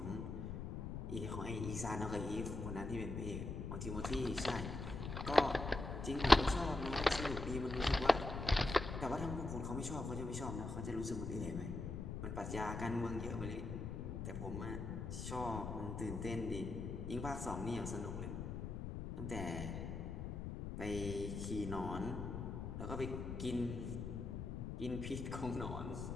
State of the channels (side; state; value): left; noise; rumble, 5 dB below the sound